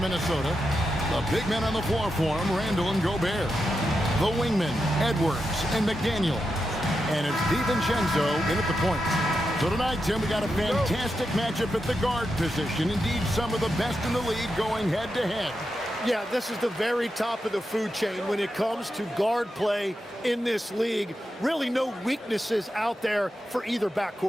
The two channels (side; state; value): both; normal; correlation 0.88